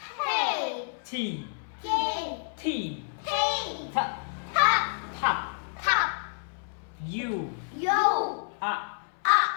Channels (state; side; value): silent; right; 59 dB below the other